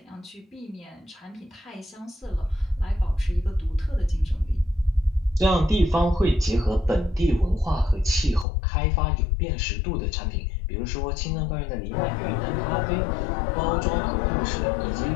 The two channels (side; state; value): right; drops out; at 8.5 s